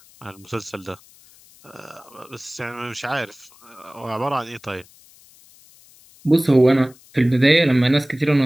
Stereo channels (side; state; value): left; noise; hiss, 26 dB below the sound